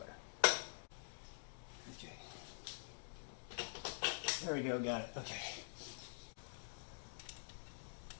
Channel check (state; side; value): silent; right; digital silence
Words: Okay. There we go, got it. Okay.